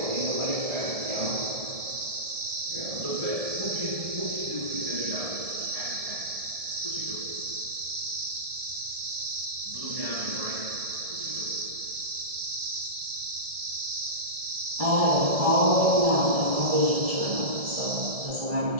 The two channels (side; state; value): left; late; 1.7 ms